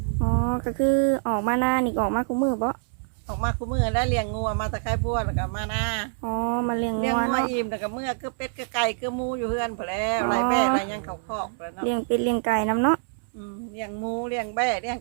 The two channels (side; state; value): left; silent; 61 dB below the other